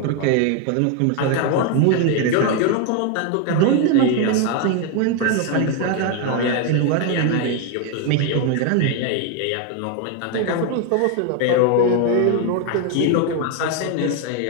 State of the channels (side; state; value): both; different; correlation 0.01